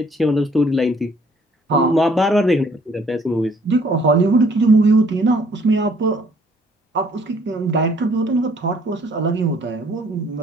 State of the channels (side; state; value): both; normal; correlation 0.61